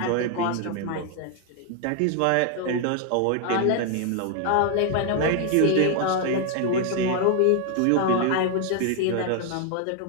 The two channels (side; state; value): both; different; correlation 0.00